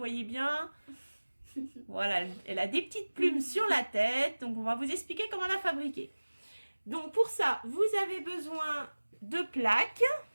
bien. Voilà, elle a des petites plumes sur la tête, donc on va vous expliquer comment la fabriquer. Donc pour ça, vous avez besoin de plaques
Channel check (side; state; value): both; inverted; correlation -1.00